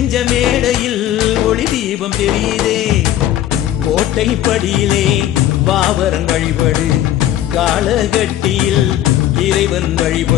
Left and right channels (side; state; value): right; quieter; 12.6 dB